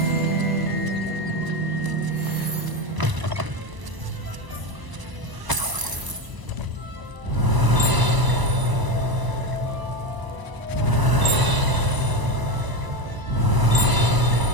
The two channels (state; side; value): late; left; 1.0 ms